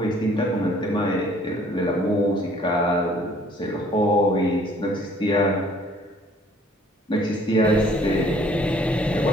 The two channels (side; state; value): both; normal; correlation 0.59